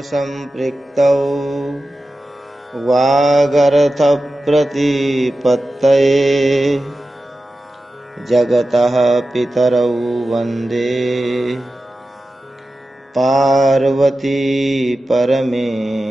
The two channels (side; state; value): both; normal; correlation 0.93